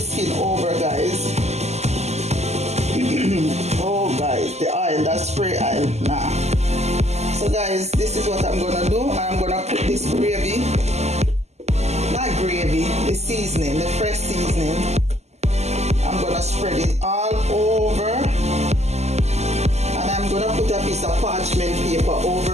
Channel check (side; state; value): left; late; 0.32 ms